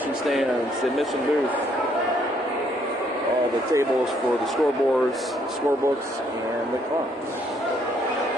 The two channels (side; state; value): both; normal; correlation 0.69